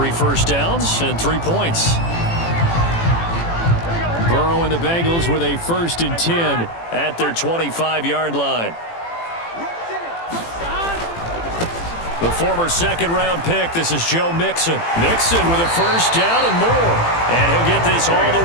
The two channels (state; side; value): late; right; 18 ms